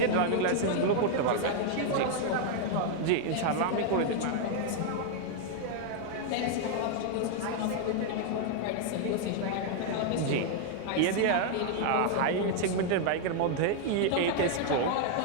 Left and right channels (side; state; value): both; different; correlation 0.00